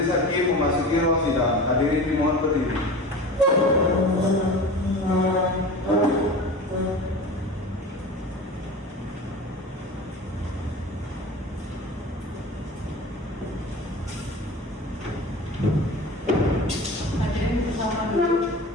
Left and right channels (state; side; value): normal; both; correlation 0.34